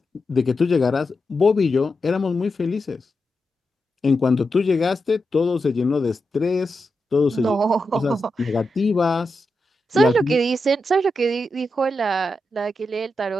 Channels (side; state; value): both; normal; correlation 0.88